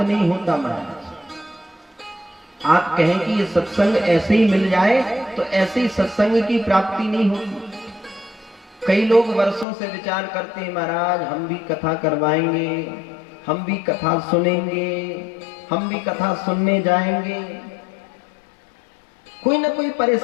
नहीं होता महाराज। आप कहें कि ये सत्संग ऐसे ही मिल जाए तो ऐसे ही सत्संग की प्राप्ति नहीं होती। कई लोग वर्षों से विचार करते हैं, महाराज हम भी कथा करवाएंगे, हम भी कथा सुनेंगे, हम भी कथा सुनने जाएंगे। कोई ना कोई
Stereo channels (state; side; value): drops out; right; at 9.7 s